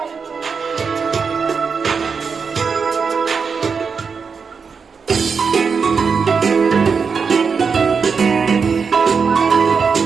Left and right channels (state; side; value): quieter; left; 5.6 dB